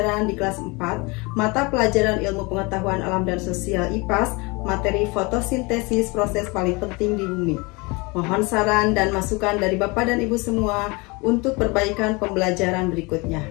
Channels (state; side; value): quieter; right; 26.9 dB